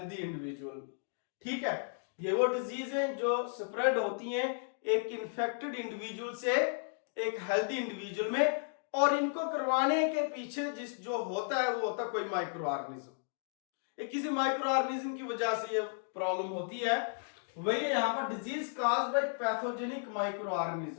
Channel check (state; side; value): silent; right; digital silence